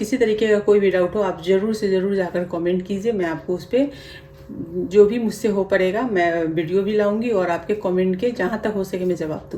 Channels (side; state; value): both; identical; correlation 1.00